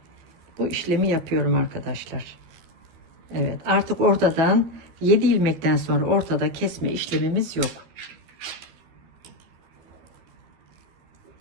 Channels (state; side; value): late; left; 12 ms